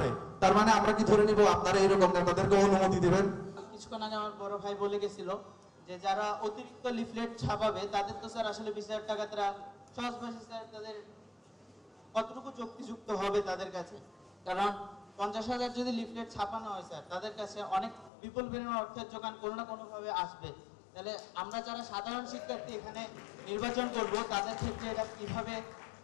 তার মানে আমরা কি ধরে নিব আপনারা এরকম নেতাদেরকে অনুমতি দিবেন? কিছুক্ষণ আগে আমার বড় ভাই বলে গেছিল যে যারা অতিরিক্ত লিফলেট ছাপাবে তাদের তো স্যার আসলে 20,000 টাকা তারা সহজ ভাষায় স্যার তাদের কতটুকু যুক্তিযুক্ত হবে তাদের কাছে? কারণ 50,000 যদি লিফলেট ছাপানো হয় স্যার, তাদের কাছে অনেক বিপুল পরিমাণ অর্থের যোগান কোনো না কোনোভাবে আসবে। তাহলে আমরা যারা সাধারণ শিক্ষার্থী এখানে নির্বাচন করব, তাদের ক্ষেত্রে এটা কিভাবে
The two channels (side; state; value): right; drops out; at 18.1 s